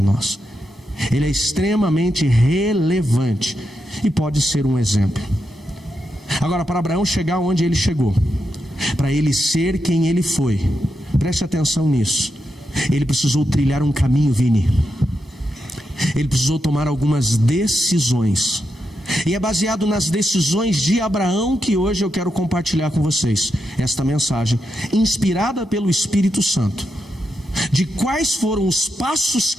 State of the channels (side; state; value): both; normal; correlation 0.85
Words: nós. Ele é extremamente relevante e pode ser um exemplo. Agora, para Abraão chegar onde ele chegou, para ele ser quem ele foi, preste atenção nisso, ele precisou trilhar um caminho, Vini. Ele precisou tomar algumas decisões, e é baseado nas decisões de Abraão que hoje eu quero compartilhar com vocês esta mensagem, inspirada pelo Espírito Santo. de quais foram os passos